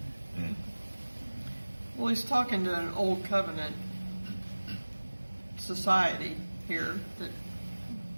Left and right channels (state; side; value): inverted; both; correlation -1.00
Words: right. Mm. Well, he's talking to an old covenant society here that